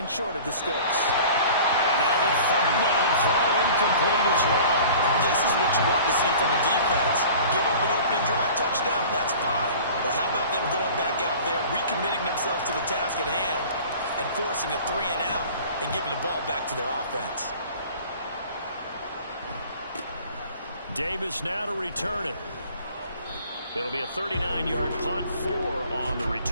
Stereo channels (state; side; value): inverted; both; correlation -0.44